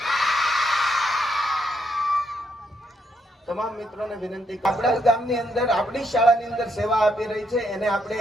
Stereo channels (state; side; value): normal; both; correlation 0.76